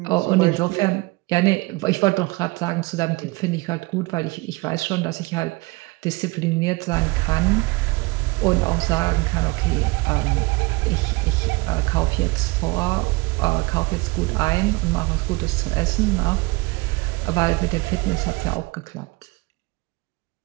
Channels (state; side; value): quieter; left; 24.3 dB